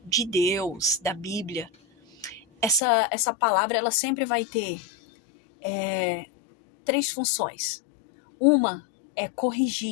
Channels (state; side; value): drops out; right; at 2.8 s